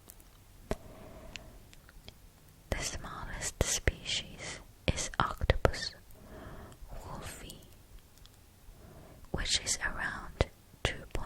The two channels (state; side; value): identical; both; correlation 1.00